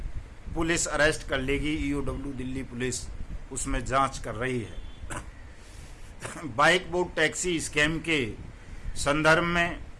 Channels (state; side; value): identical; both; correlation 1.00